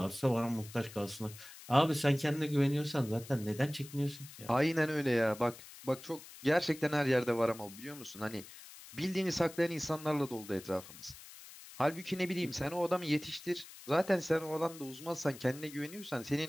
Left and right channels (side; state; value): left; noise; hiss, 17 dB below the sound